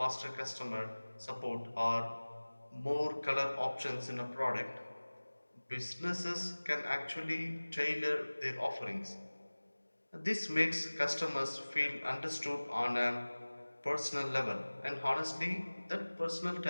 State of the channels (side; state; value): both; inverted; correlation -1.00